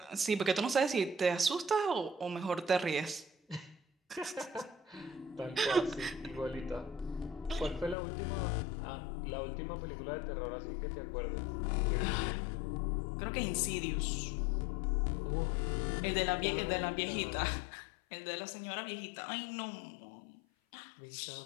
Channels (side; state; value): right; drops out; at 8.0 s